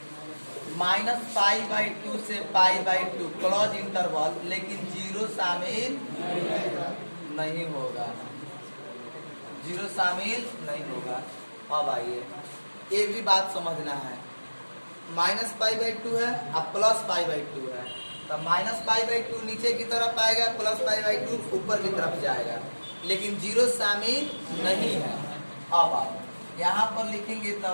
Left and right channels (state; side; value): inverted; both; correlation -1.00